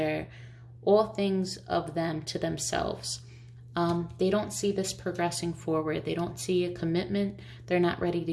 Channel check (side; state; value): both; identical; correlation 1.00